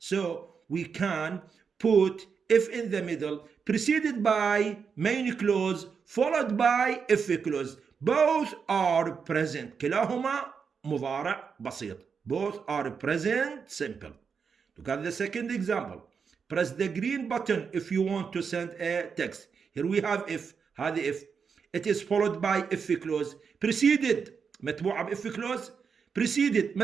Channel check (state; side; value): quieter; left; 6.0 dB